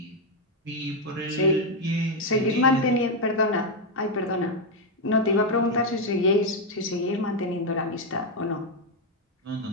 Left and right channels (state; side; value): normal; both; correlation 0.03